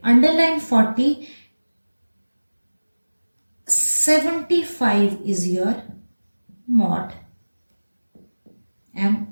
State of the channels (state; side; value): inverted; both; correlation -1.00